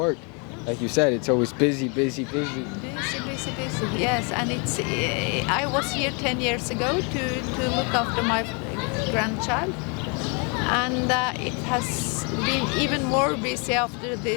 Like you said, it's always busy. Busy. Yes, and it's. I was here 10 years ago to look after my grandchild, and it has been even more busy after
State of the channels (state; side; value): quieter; right; 34.3 dB